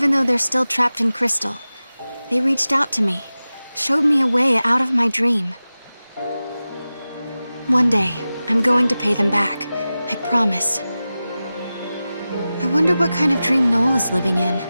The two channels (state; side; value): inverted; both; correlation -0.95